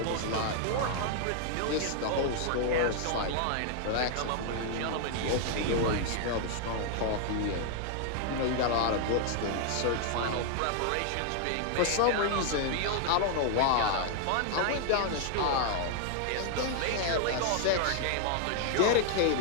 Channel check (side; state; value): both; different; correlation 0.00